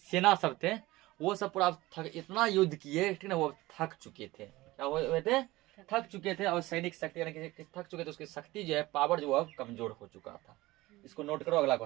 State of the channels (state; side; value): quieter; left; 19.2 dB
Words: सब थे, वो सब पूरा इतना युद्ध किए, ठीक ना, वो थक चुके थे। क्या हुए थे? थक चुके थे। और सैनिक शक्ति यानी कि थक चुके थे, उसकी शक्ति जो है, पावर जो है, कमजोर हो चुका था। इसको नोट करो, अगला